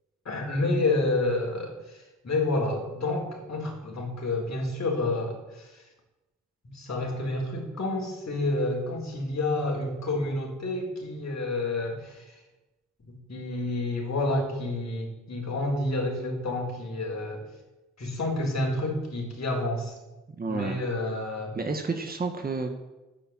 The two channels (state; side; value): normal; both; correlation 0.30